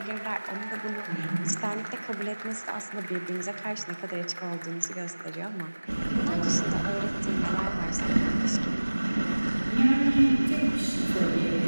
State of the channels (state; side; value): inverted; both; correlation -1.00